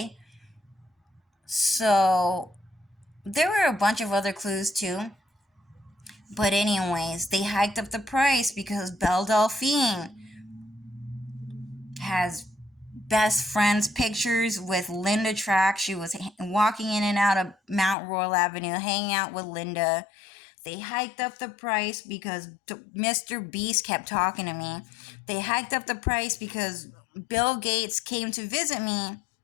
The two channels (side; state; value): right; drops out; at 17.9 s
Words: So there were a bunch of other clues too. But anyways, they hiked up the price because Belle Delphine has best friends pictures with Linda Track. She was walking in and out of Mount Royal Avenue, hanging out with Linda. They hiked up the price because Mr. Beast kept talking to me. They hiked up the price because Bill Gates came to visit me,